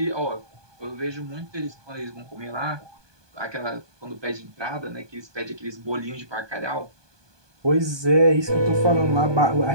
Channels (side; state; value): left; late; 1.2 ms